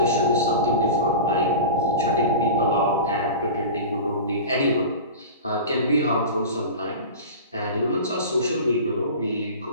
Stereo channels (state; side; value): inverted; both; correlation -0.31